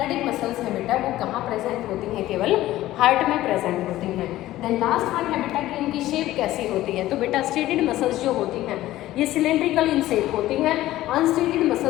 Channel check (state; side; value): quieter; right; 15.3 dB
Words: मसल्स है बेटा वो कहाँ प्रेजेंट होती हैं, केवल हार्ट में प्रेजेंट होती हैं। देन लास्ट वन है बेटा कि इनकी शेप कैसी होती है, तो बेटा स्टेटेड मसल्स जो होती हैं ये सिलेंड्रिकल इन शेप होती हैं, अनस्टेटेड